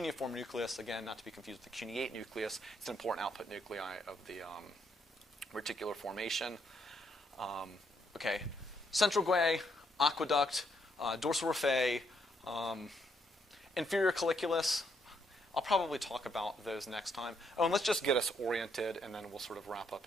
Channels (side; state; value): both; normal; correlation 0.74